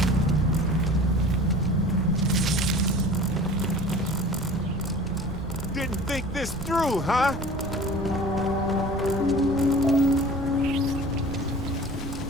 this through, huh?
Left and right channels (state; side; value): noise; right; rumble, 12 dB below the sound